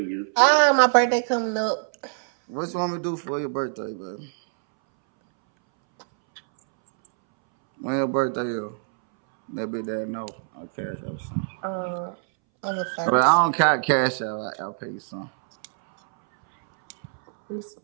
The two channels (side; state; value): left; silent; 62 dB below the other